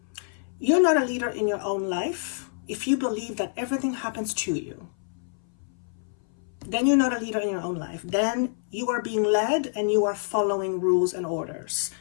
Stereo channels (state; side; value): silent; right; 58 dB below the other